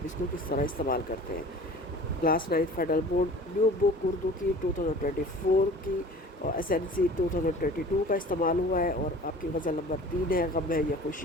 اس کو کس طرح استعمال کرتے ہیں۔ کلاس 9 فیڈرل بورڈ نیو بک اردو کی 2024 کی اور SNC 2022 کا استعمال ہوا ہے، اور آپ کی غزل نمبر 3 ہے، غم ہے یا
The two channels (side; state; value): both; normal; correlation 0.43